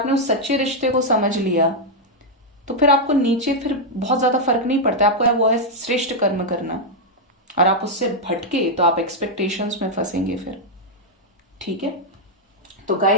उस सच्चे रिश्ते को समझ लिया तो फिर आपको नीचे फिर बहुत ज्यादा फर्क नहीं पड़ता। आपको वो है श्रेष्ठ कर्म करना, और आप उससे भटके तो आप एक्सपेक्टेशंस में फंसेंगे फिर। ठीक है, तो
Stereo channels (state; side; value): normal; both; correlation -0.02